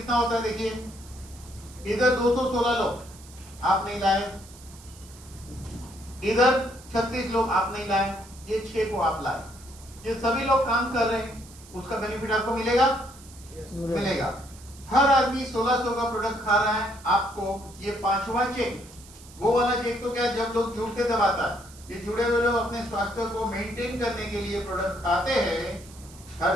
होता है देखिए, इधर 216 लोग आप नहीं लाए, इधर 36 लोग आप नहीं लाए, ये 6 को आप लाए। ये सभी लोग काम कर रहे हैं, उसका बेनिफिट आपको मिलेगा? मिलेगा। हर आदमी 1600 का प्रोडक्ट खा रहा है। आपको ये 5वां चेक, वो वाला चेक तो क्या जब लोग जुड़ते तब आता है। ये जुड़े हुए लोग अपने स्वास्थ्य को मेंटेन करने के लिए प्रोडक्ट खाते हैं हर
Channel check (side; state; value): right; noise; hiss, 21 dB below the sound